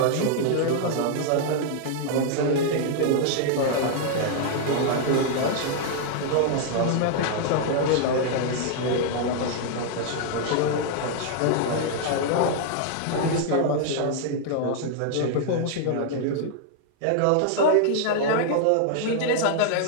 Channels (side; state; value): both; different; correlation 0.00